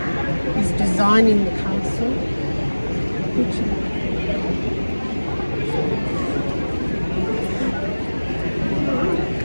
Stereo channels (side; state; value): both; inverted; correlation -1.00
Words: He's designing the castle.